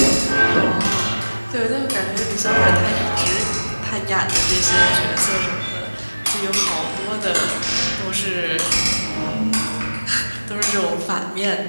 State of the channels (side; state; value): both; inverted; correlation -1.00